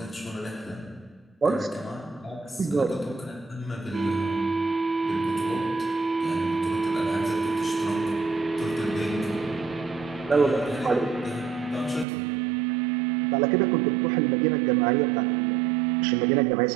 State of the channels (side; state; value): left; drops out; at 12.1 s